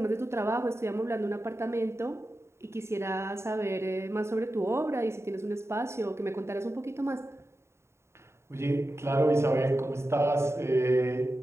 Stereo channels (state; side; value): late; left; 0.13 ms